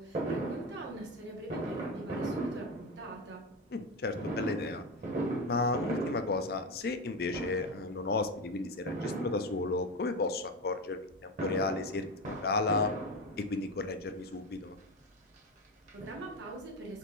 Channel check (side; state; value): both; normal; correlation 0.19